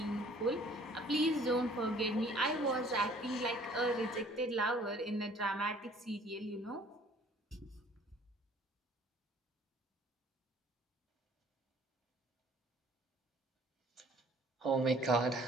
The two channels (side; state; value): both; normal; correlation 0.55